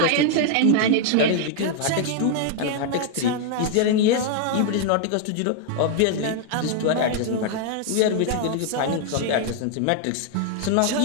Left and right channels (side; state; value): both; different; correlation 0.00